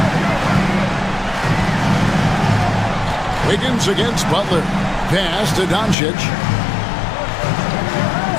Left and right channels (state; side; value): drops out; right; at 6.0 s